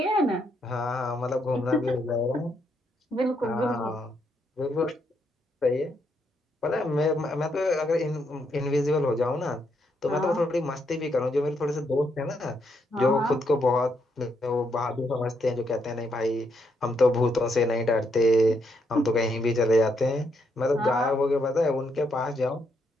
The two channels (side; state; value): both; normal; correlation 0.77